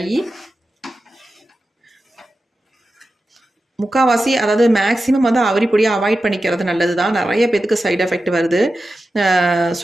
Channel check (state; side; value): normal; both; correlation 0.92